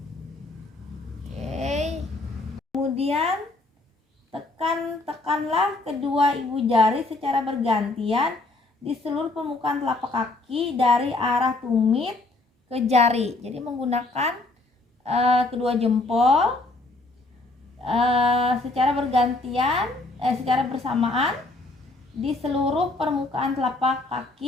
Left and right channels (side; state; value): right; quieter; 3.1 dB